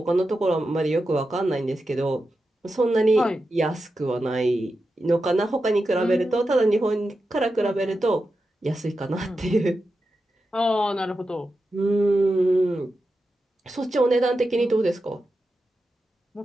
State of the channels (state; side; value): normal; both; correlation 0.90